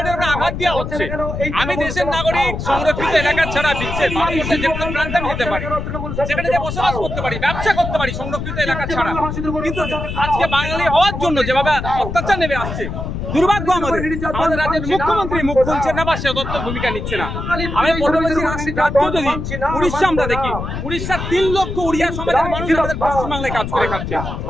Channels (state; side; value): noise; left; rumble, 5 dB below the sound